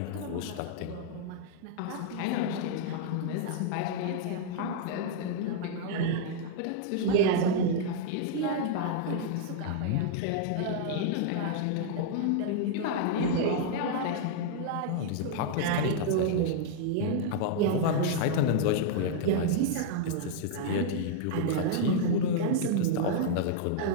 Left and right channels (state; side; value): different; both; correlation -0.01